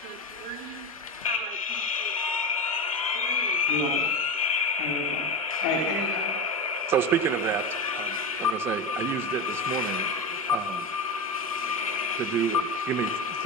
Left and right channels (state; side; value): normal; both; correlation 0.19